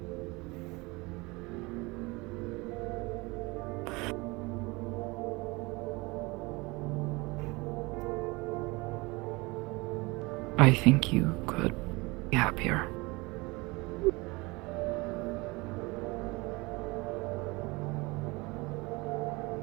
I think you could be happier.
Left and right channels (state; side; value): quieter; left; 24.4 dB